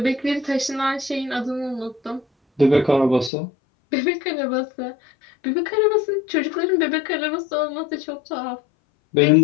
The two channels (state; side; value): drops out; right; at 3.3 s